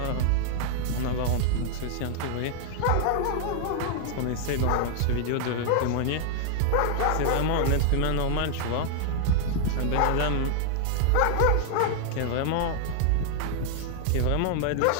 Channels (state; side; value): different; both; correlation 0.00